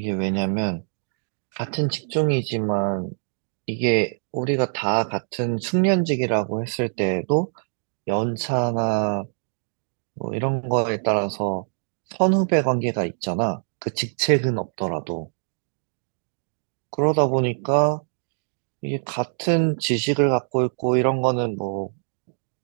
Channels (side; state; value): left; silent; digital silence